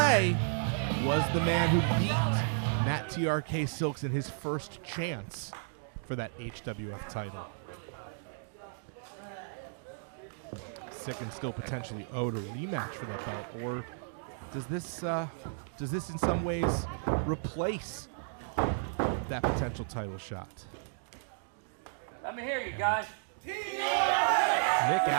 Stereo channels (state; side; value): silent; left; digital silence